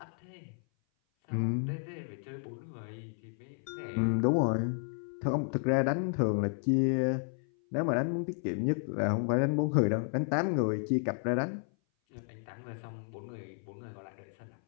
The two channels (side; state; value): right; silent; 56 dB below the other